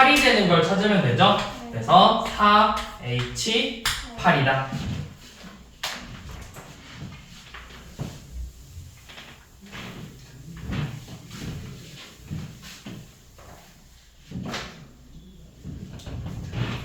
되는 걸 찾으면 되죠? 그래서 4H8이다.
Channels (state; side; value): identical; both; correlation 1.00